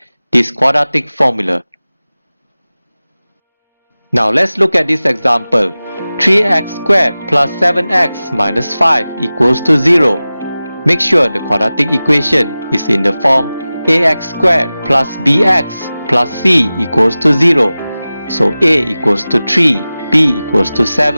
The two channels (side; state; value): both; inverted; correlation -0.97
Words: this quadratic formula. Now let's look at this example. 3x squared plus 7x minus 5 equals to 0. Make sure the quadratic equation is in the form ax squared plus bx plus c equals to 0. So a equals to 3, b equals to